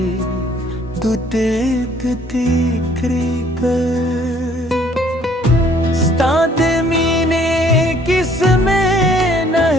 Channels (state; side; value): normal; both; correlation 0.60